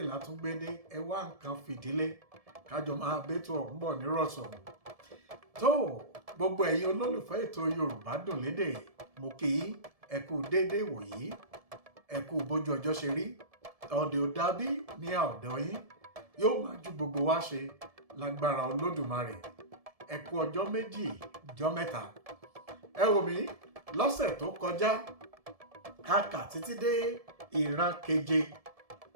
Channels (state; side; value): late; left; 1.7 ms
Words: látúngbédé ẹ wá nǹkan fìdílé. Kájọ máa bẹ́tò ọ̀hún bọ̀ nírọ̀sọ̀rọ̀. Tó gbogbo ẹ̀yin olólùfẹ́ ètò Yorùbá dùn lédè mo kí yín ẹ kú déédé wòyí ẹ kú bójú ọjọ́ ṣe rí ọ̀dẹ̀ ò dàbí ní ọ̀dọ̀ yín yóò máa ju gbogbo wa ṣe lágbára Olódùmarè ẹ kú ọjọ́ méjì ọjọ́ mẹ́ta ẹ wò mí lọ́sẹ̀ tó kọjá a kà títí dé ìran keje